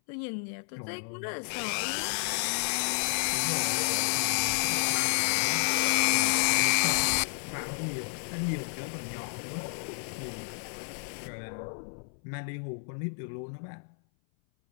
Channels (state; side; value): silent; right; 58 dB below the other